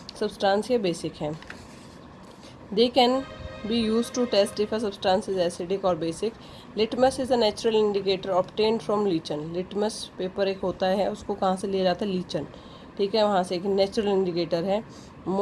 substance या basic है। They can be used to test if a substance is acidic or basic. Litmus is a natural indicator obtained from lichen. Litmus paper एक होता है, उसको कहाँ से लिया जाता है? लीचन, ठीक है, वहाँ से एक नेचुरल इंडिकेटर है।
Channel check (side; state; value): both; identical; correlation 1.00